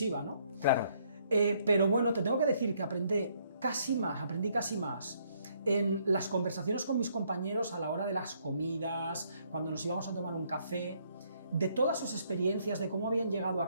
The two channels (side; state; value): both; inverted; correlation -0.69